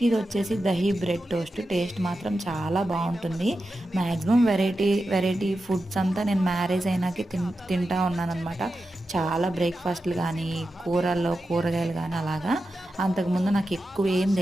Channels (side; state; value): both; normal; correlation 0.91